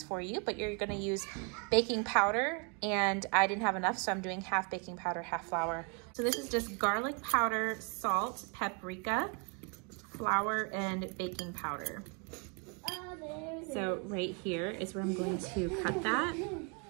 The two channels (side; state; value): left; quieter; 35.4 dB